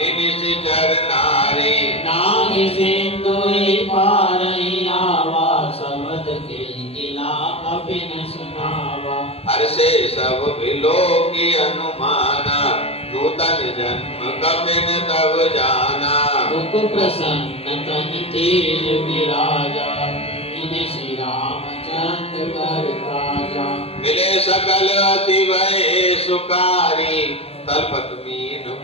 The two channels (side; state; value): right; late; 0.29 ms